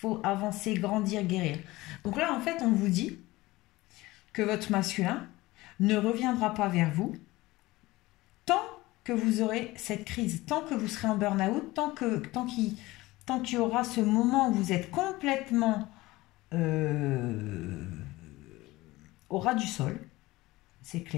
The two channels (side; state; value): right; quieter; 19.5 dB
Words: avancer, grandir, guérir. Donc là, en fait, on vous dit que votre masculin ne reviendra pas vers vous tant que vous aurez cette crise, tant que vous serez en burn-out, tant qu'il y aura ce moment où vous êtes complètement au ras du sol, c'est